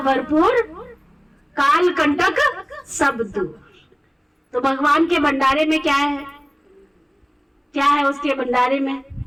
काल कंटक सब दूर। तो भगवान के भंडारे में क्या है? क्या है उसके भंडारे में?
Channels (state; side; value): identical; both; correlation 1.00